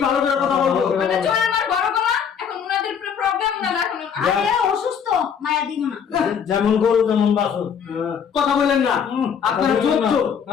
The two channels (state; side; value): quieter; right; 7.4 dB